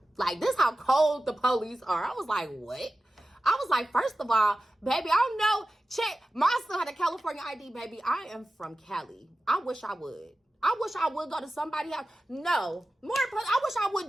Like, this how cold the police are. I was like, what? I was like, first of all, baby, I don't know. Check. My son had a California ID, baby. I am from Cali. I wish I would. I wish I would go to somebody's house. No. More important, I wish I would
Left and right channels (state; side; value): normal; both; correlation 0.95